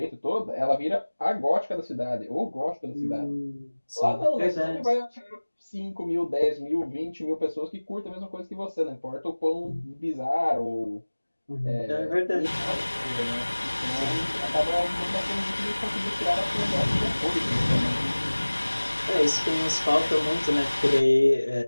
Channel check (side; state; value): both; inverted; correlation -1.00